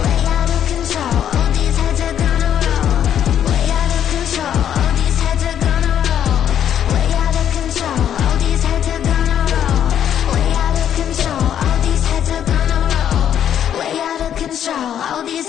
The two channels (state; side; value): quieter; right; 9.7 dB